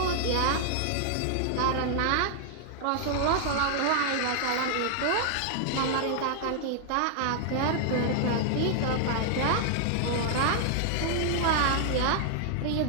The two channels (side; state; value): both; different; correlation 0.00